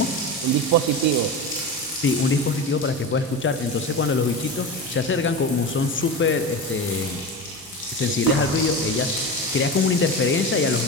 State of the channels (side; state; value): right; noise; hum, 29 dB below the sound